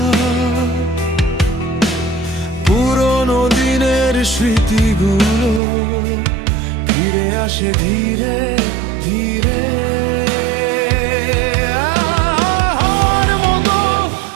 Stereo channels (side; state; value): left; drops out; at 5.6 s